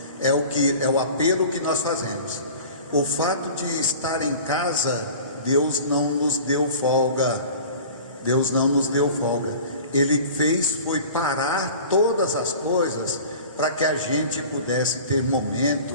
É o apelo que nós fazemos. O fato de estar em casa, Deus não nos deu folga. Deus não nos deu folga. Ele foi parar todas as coisas para que a gente pudesse ter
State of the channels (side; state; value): both; inverted; correlation -0.41